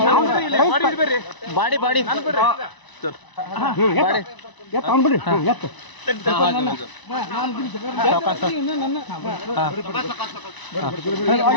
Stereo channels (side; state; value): right; late; 1.0 ms